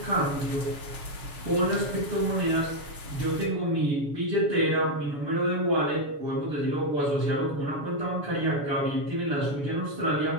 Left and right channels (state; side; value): late; left; 7.0 ms